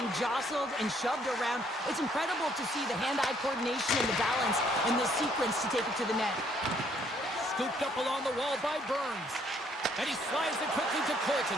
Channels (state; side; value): normal; both; correlation 0.66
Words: jostled and shoved around, it's incredible to see the hand-eye coordination and the balance in this sequence to take it to the net. Scooped up along the wall by Burns. And he slides it quickly to